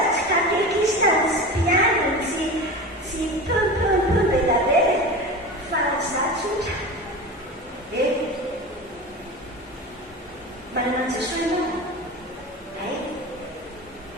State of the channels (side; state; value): both; normal; correlation 0.30